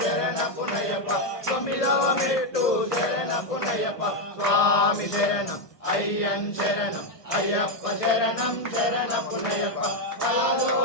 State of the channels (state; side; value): late; right; 1.3 ms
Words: శరణపునయప్ప తొమ్మిదవ మెట్టు శరణపునయప్ప స్వామి శరణం అయ్యన్ శరణం అయ్యప్ప శరణం శరణపునయప్ప పదవ